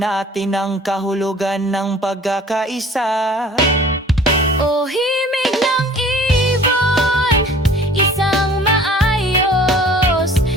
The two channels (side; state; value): both; normal; correlation 0.49